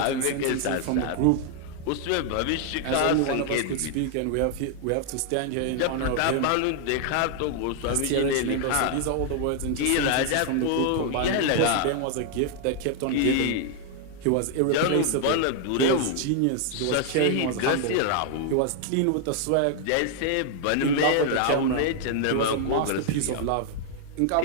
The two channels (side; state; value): both; different; correlation 0.00